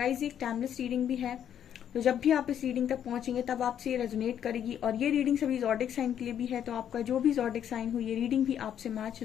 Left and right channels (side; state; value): right; quieter; 9.5 dB